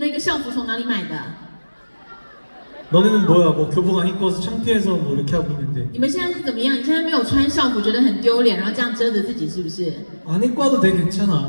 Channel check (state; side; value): inverted; both; correlation -1.00